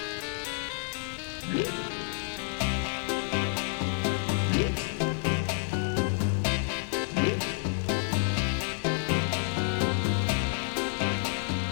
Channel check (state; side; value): silent; right; digital silence